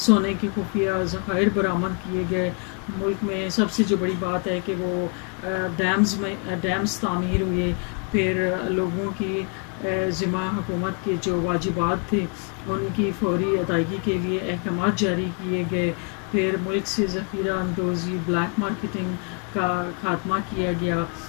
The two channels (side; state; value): right; quieter; 35.1 dB